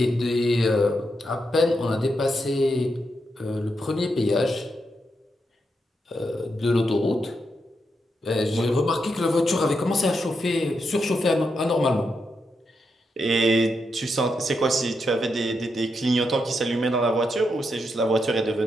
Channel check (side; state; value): both; normal; correlation 0.83